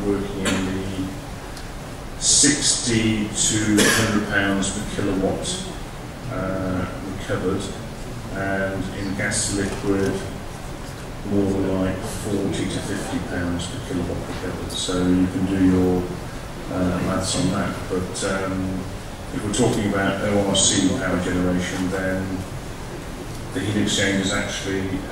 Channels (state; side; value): identical; both; correlation 1.00